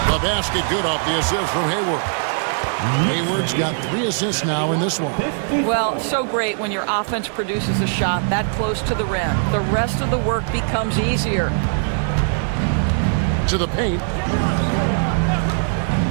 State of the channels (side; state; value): left; silent; digital silence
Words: The basket good off the assist from Hayward. Hayward's got 3 assists now in this one. Well, so great when your offense produces a shot that close to the rim. The rest of the work becomes easier. To the paint.